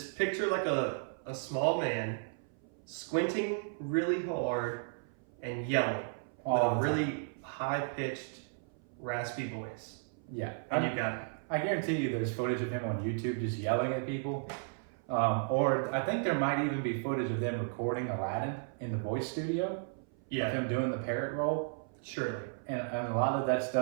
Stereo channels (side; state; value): left; silent; 55 dB below the other